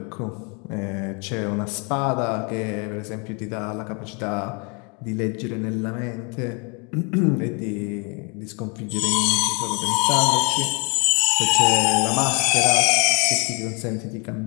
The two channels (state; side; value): quieter; right; 33.2 dB